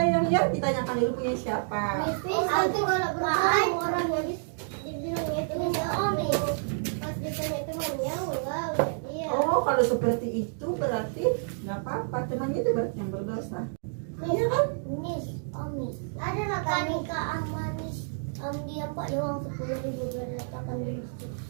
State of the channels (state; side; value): silent; left; digital silence